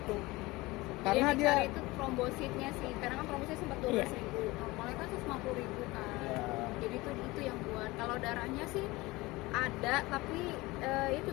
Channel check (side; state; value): right; quieter; 21.2 dB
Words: tuh. Karena yang dia dicari itu trombositnya sih, karena kan trombositnya sempat 12.000, normalnya kan 150.000 kan. Jadi itu yang buat. Kalau darahnya sih ada, tapi itu